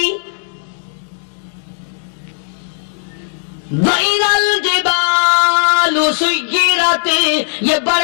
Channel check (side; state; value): right; silent; digital silence